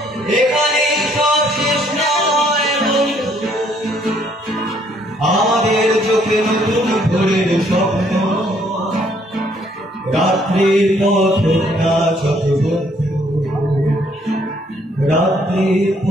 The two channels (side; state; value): both; normal; correlation 0.66